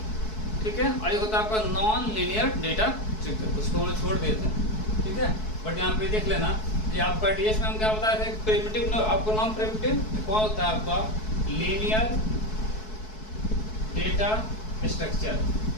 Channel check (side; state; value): right; late; 4.6 ms